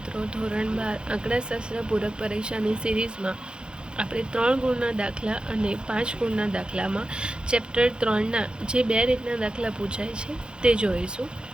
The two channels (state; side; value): late; left; 0.050 ms